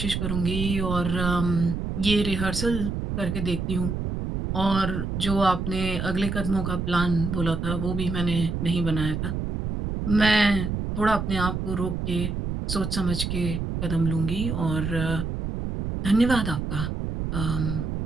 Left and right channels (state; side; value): noise; right; rumble, 3 dB below the sound